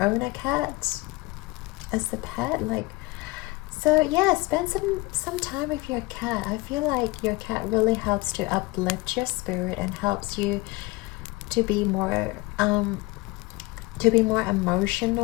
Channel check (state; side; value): quieter; right; 22.7 dB